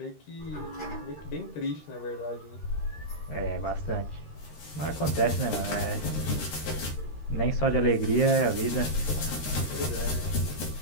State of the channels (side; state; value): right; late; 13 ms